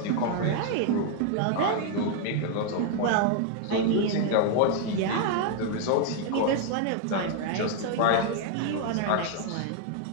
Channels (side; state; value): both; different; correlation 0.00